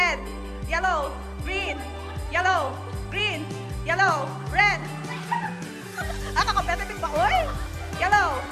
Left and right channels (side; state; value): both; identical; correlation 1.00